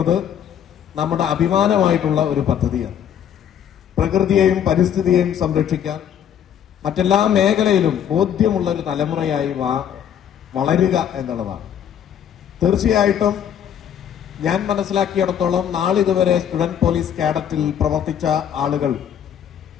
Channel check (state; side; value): quieter; right; 9.2 dB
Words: നമ്മുടെ അഭിമാനമായിട്ടുള്ള ഒരു പദ്ധതിയാണ്. പ്രകൃതിയെയും പരിസ്ഥിതിയെയും സംരക്ഷിക്കാൻ മറ്റെല്ലാ മേഖലയിലും ബോധ്യമുള്ള ഒരു തലമുറയായി വളരുക എന്നുള്ളതാണ്. തീർച്ചയായിട്ടും ഞാൻ മനസ്സിലാക്കിയിടത്തോളം നാളിതുവരെ സ്റ്റുഡന്റ് പോലീസ് കേഡറ്റിൽ പ്രവർത്തിച്ച ആളുകൾ